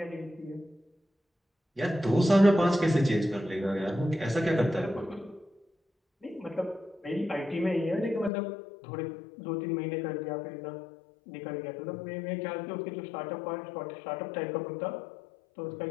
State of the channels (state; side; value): drops out; right; at 8.3 s